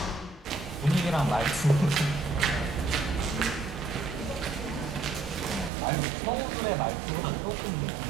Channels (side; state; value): left; drops out; at 5.7 s